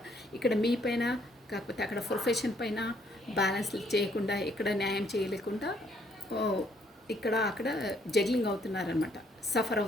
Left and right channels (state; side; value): normal; both; correlation 0.67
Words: ఇక్కడ మీ పైన, కాకపోతే అక్కడ ప్రొఫెషన్ పైన బ్యాలెన్స్ చేయకుండా, ఇక్కడ న్యాయం చేయలేకుండా ఇక్కడ అక్కడ జగ్లింగ్ అవుతున్నారనమాట, సఫర్